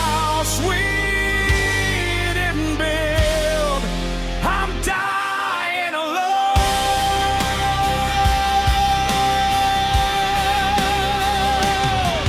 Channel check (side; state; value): both; identical; correlation 1.00